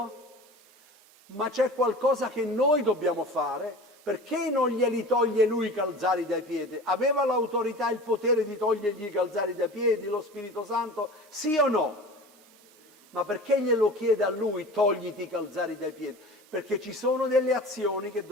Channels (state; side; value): normal; both; correlation 0.37